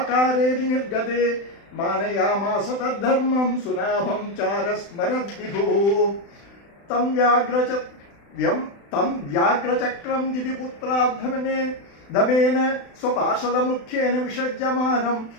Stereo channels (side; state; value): right; late; 35 ms